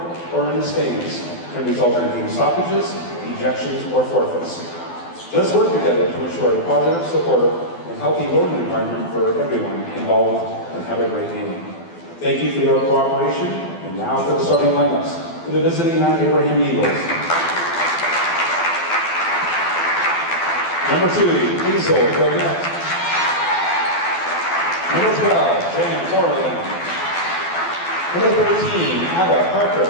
or in the stands can result in game stoppages, ejections, or forfeits. Let's work together to ensure a positive, supportive, and healthy learning environment for everyone involved, and have a great game. Thank you for your cooperation, and now for the starting lineups for the visiting Mount Abraham Eagles. Number 2, Hazel Gillette. Number 12, Jan Corlin. Number 13, Ada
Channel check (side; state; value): right; late; 12 ms